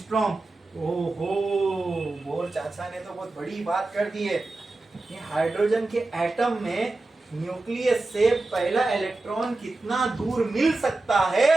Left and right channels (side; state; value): left; quieter; 3.1 dB